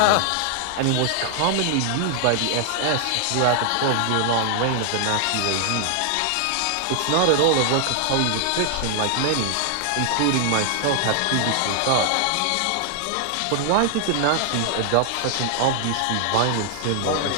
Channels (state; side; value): different; both; correlation 0.00